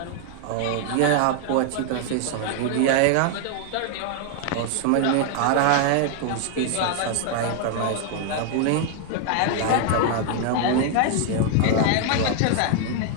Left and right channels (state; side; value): different; both; correlation 0.00